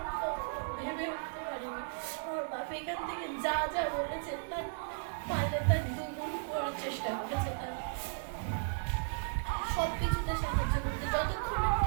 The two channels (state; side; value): silent; left; 54 dB below the other